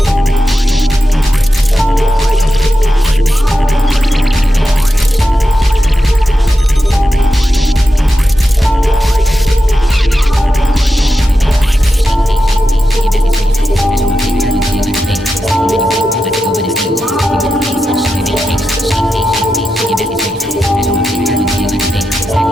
Let's go with it.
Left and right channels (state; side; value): normal; both; correlation 0.89